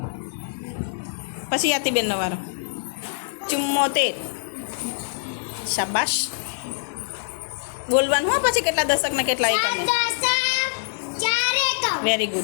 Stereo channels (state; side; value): silent; right; digital silence